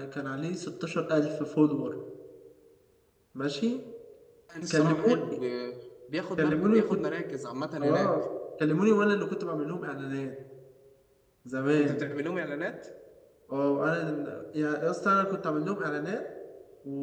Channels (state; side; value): identical; both; correlation 1.00